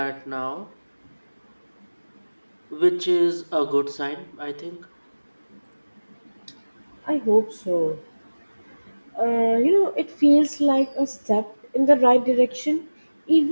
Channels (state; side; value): inverted; both; correlation -1.00